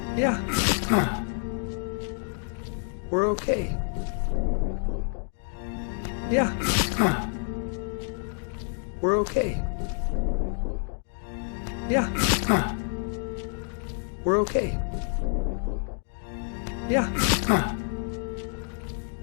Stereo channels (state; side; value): silent; right; 59 dB below the other